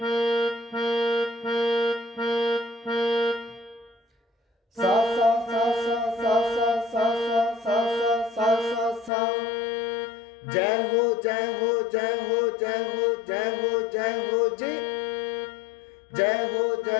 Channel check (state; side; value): drops out; right; at 9.1 s